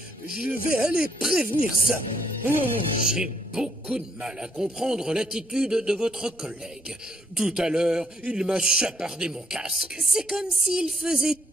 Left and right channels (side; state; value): both; normal; correlation 0.71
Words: Je vais aller prévenir ça. J'ai beaucoup de mal à comprendre l'attitude de votre collègue. Tout à l'heure, il m'a chapardé mon casque. C'est comme s'il faisait